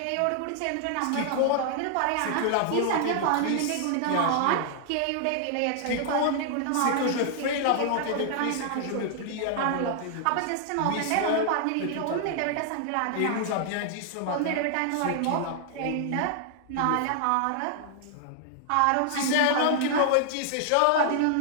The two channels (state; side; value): different; both; correlation 0.00